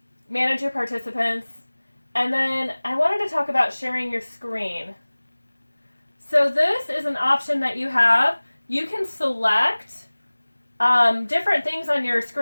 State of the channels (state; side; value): inverted; both; correlation -1.00